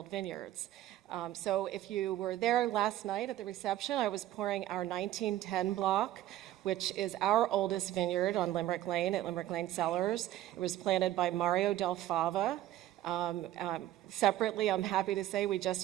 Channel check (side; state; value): left; quieter; 13.7 dB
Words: vineyards. So if you were there last night at the reception, I was pouring our 1910 block, which is our oldest vineyard on Limerick Lane at Limerick Lane Cellars. It was planted by Mario Del Fava. Separately, I'm happy to say we